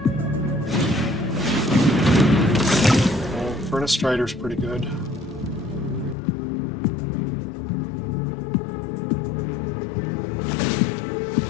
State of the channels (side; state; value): right; drops out; at 6.2 s